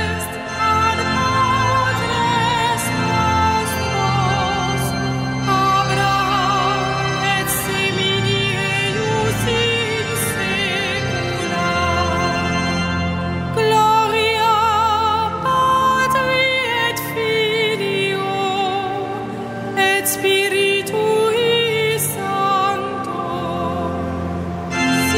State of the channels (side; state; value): both; identical; correlation 1.00